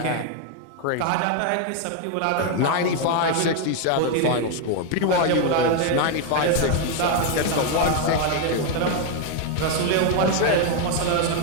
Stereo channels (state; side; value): different; both; correlation 0.01